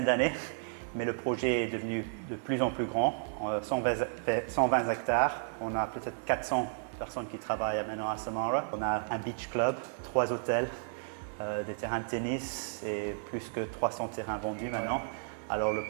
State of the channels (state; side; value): silent; left; digital silence